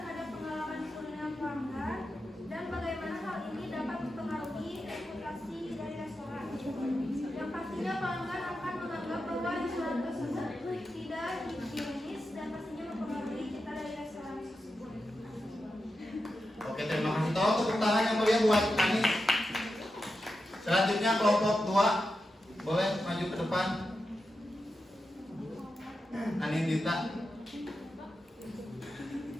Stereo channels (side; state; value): both; normal; correlation 0.89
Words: pengalaman kuliner pelanggan dan bagaimana hal ini dapat mempengaruhi reputasi dari restoran? Yang pastinya pelanggan akan menganggap bahwa restoran tersebut tidak higienis dan pastinya mempengaruhi cita dari restoran tersebut. Oke, terima kasih. Tolong tepuk tangan yang mulia buat Anis. Selanjutnya kelompok 2 boleh maju ke depan. Anindita,